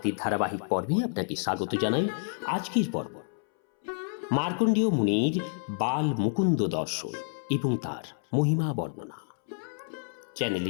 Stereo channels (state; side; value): silent; right; 59 dB below the other